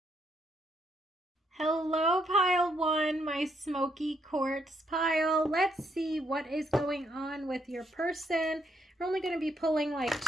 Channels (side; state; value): both; normal; correlation 0.74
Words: Hello, pile 1, my smoky quartz pile. Let's see what is going on with your person. We're only going to be pulling like